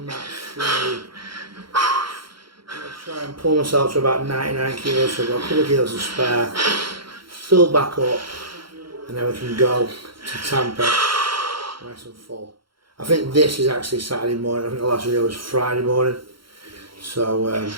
that through. I'm going to try and pull myself to about 99 kilos, so we've got a couple of kilos to spare, fill back up, and then we can go to Tampa, nice and full. I think this is actually Saturday morning, I think the last video was Friday morning. So,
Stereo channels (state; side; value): late; left; 0.73 ms